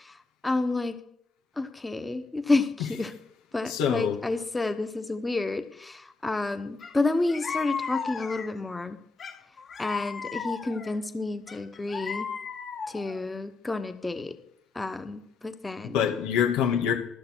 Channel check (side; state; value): right; quieter; 3.9 dB